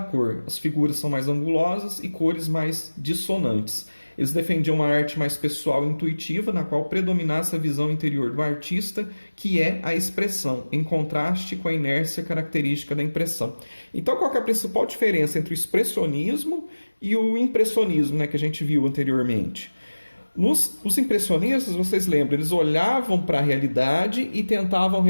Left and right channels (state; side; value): inverted; both; correlation -1.00